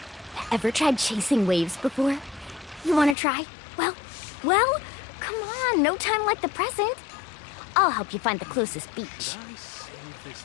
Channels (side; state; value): right; drops out; at 3.2 s